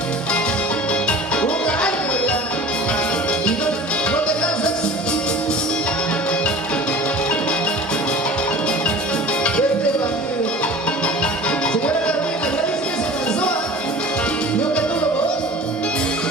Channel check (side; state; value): both; normal; correlation 0.40